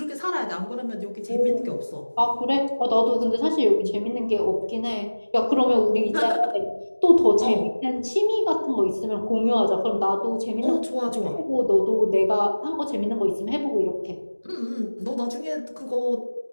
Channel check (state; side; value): inverted; both; correlation -1.00